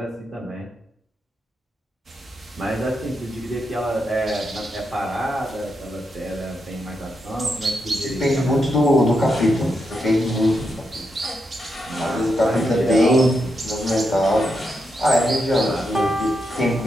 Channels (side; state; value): both; normal; correlation 0.84